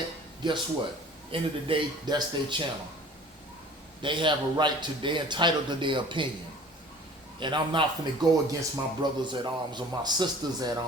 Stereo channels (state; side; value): normal; both; correlation 0.47